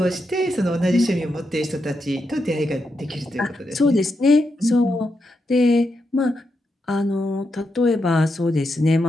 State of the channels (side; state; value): both; normal; correlation 0.84